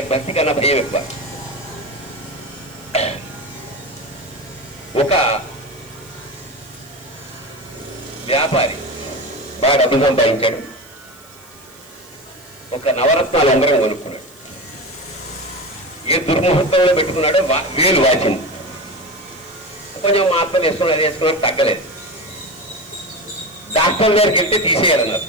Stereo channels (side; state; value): right; noise; hiss, 25 dB below the sound